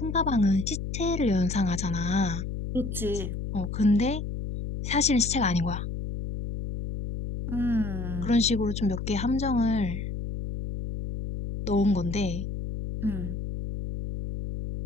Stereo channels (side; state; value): left; noise; hum, 5 dB below the sound